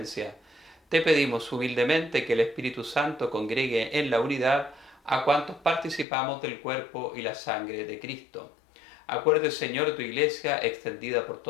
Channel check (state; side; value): drops out; right; at 6.1 s